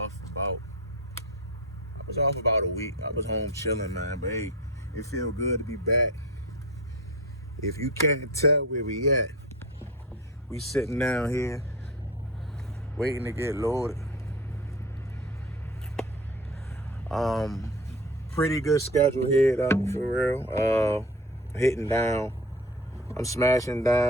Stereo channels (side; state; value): both; normal; correlation 0.32